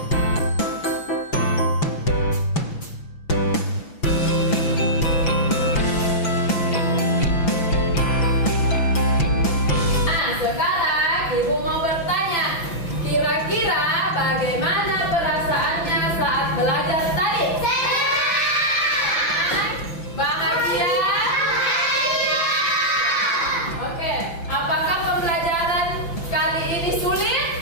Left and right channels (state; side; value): late; right; 5.9 ms